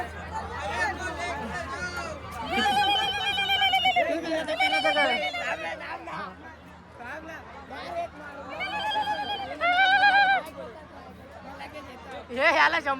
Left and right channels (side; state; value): both; identical; correlation 1.00